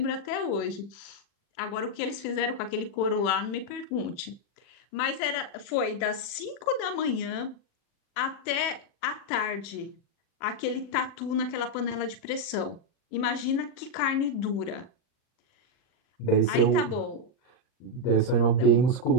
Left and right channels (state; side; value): late; right; 40 ms